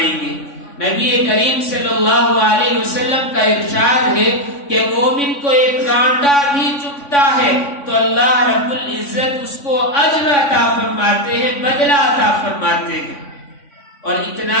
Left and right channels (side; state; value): right; late; 3.5 ms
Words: گے۔ نبی کریم صلی اللہ علیہ وسلم کا ارشاد ہے کہ مومن کو ایک کانٹا بھی چبھتا ہے تو اللہ رب العزت اس کو اجر عطا فرماتے ہیں، بدلہ عطا فرماتے ہیں۔ اور